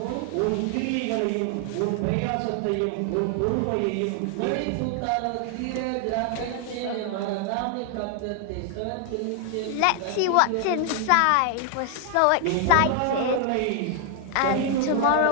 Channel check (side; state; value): both; different; correlation 0.00